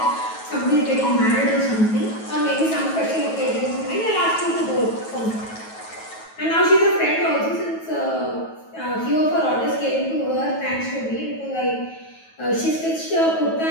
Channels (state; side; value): late; right; 9.2 ms